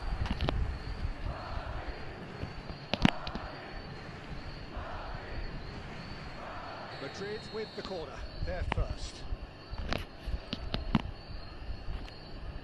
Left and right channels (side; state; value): both; identical; correlation 1.00